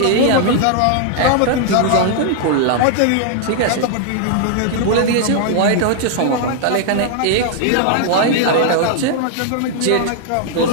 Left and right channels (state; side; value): different; both; correlation 0.00